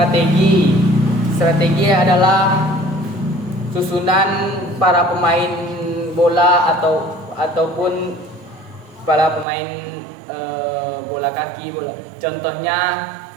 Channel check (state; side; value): drops out; left; at 9.5 s